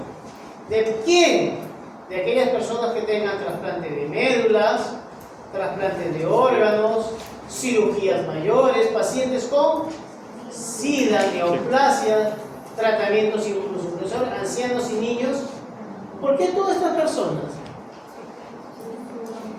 ¿De quién? De aquellas personas que tengan trasplante de médulas, trasplantes de órganos, cirugías mayores, pacientes con SIDA, neoplasia, tratamientos inmunosupresores, ancianos y niños. ¿Por qué todas estas personas?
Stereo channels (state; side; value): identical; both; correlation 1.00